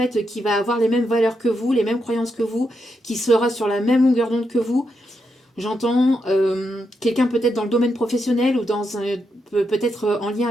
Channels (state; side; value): normal; both; correlation 0.83